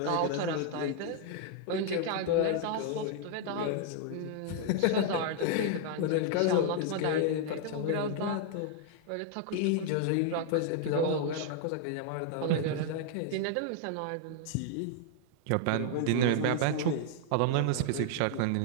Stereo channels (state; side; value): different; both; correlation 0.00